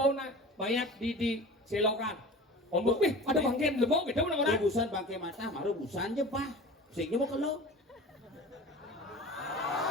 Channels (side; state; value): both; normal; correlation 0.37